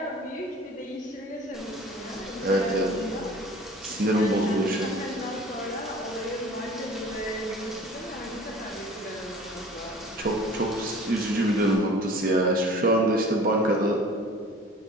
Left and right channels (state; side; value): normal; both; correlation 0.46